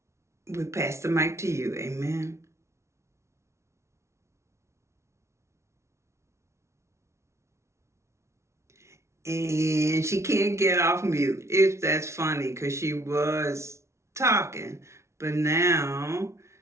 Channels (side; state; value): left; late; 0.13 ms